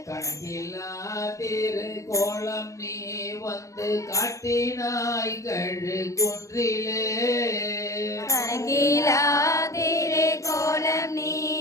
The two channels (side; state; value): right; late; 0.15 ms